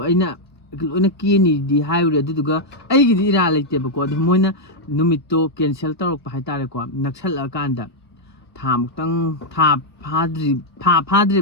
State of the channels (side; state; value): both; normal; correlation -0.02